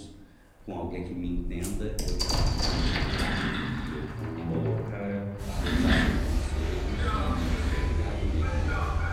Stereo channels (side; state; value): both; identical; correlation 1.00